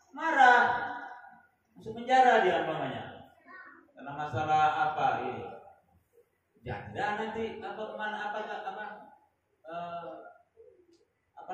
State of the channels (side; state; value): both; identical; correlation 1.00